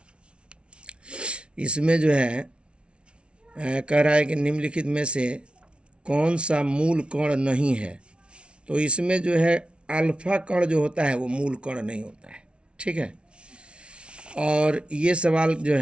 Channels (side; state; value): left; late; 0.058 ms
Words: इसमें जो है कह रहा है कि निम्नलिखित में से कौन सा मूल कण नहीं है, तो इसमें जो है अल्फा कण जो होता है वो मूल कण नहीं होता है, ठीक है। और ये सवाल जो